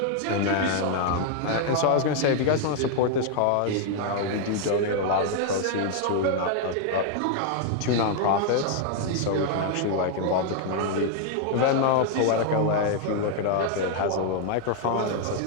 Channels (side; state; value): both; different; correlation 0.00